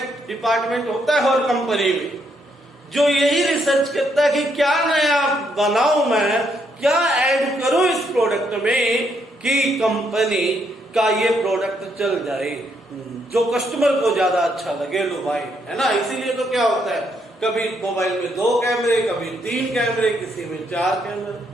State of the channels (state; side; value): normal; both; correlation 0.74